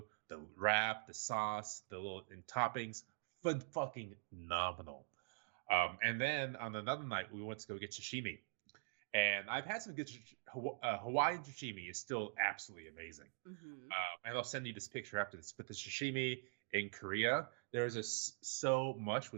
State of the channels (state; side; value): silent; left; digital silence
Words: the wrap, the sauce, the little toppings, fucking phenomenal. And then on another night, we went to go get sashimi. And I've had some good Hawaiian sashimi is still absolutely amazing. And I'll send you this picture after this. But the sashimi in Korea, there's so much